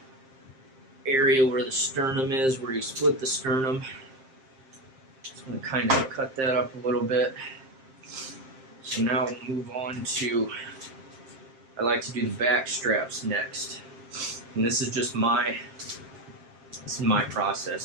area where the sternum is, where you split the sternum. Just going to kind of cut that up a little bit. So now we'll move on to, I like to do the back straps next. And this is just my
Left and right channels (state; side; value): late; left; 7.6 ms